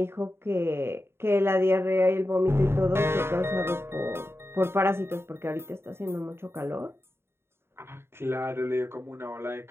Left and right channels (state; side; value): late; left; 0.12 ms